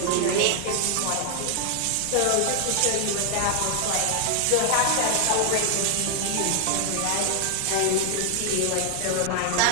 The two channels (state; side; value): different; both; correlation 0.00